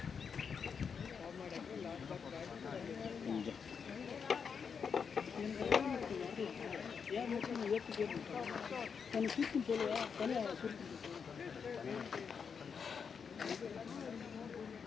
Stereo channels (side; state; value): right; quieter; 6.3 dB